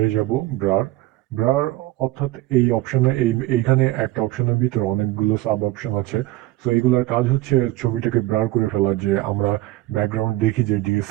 যাব, ব্রার, ব্রার অর্থাৎ এই অপশনে এইখানে একটা অপশনের ভিতরে অনেকগুলো সাব অপশন আছে। সো এগুলোর কাজ হচ্ছে ছবিটাকে ব্রার করে ফেলা, যে আমরা ব্যাকগ্রাউন্ড দেখি যে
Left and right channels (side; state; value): left; quieter; 17.4 dB